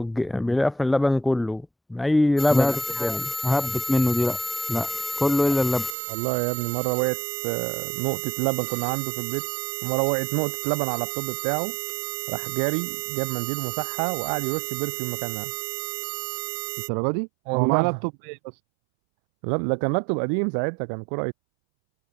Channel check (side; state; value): left; drops out; at 6.0 s